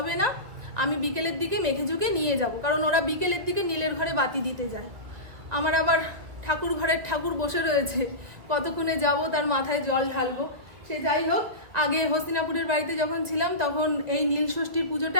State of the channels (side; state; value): left; late; 2.2 ms